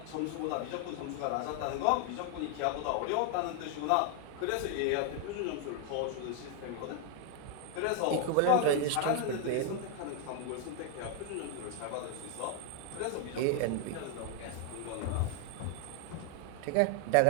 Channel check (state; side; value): different; both; correlation 0.00